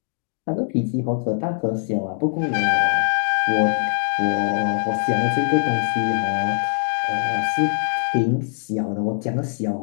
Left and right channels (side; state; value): right; silent; digital silence